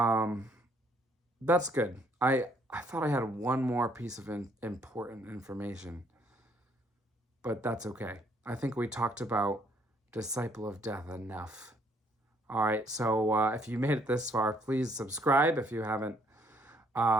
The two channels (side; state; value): both; normal; correlation 0.66